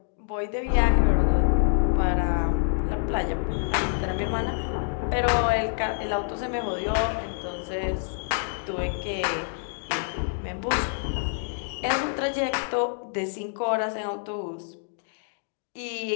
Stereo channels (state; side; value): silent; right; digital silence